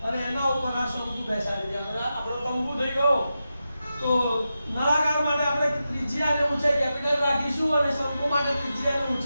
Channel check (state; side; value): inverted; both; correlation -0.90